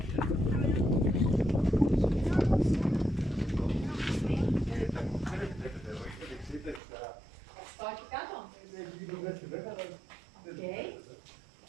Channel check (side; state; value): left; drops out; at 6.8 s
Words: Πάω εκεί κάτω.